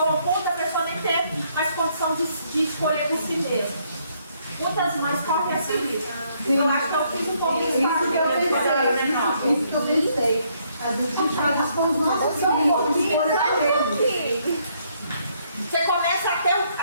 ao ponto da pessoa nem ter mais condição de escolher por si mesma. Muitas mães correm a seguir. Eu acho que eu fiz um pouco isso quando eu era menor. Isso que eu pensei. Às vezes a gente faz isso com os nossos filhos. Você começa a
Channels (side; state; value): both; inverted; correlation -0.70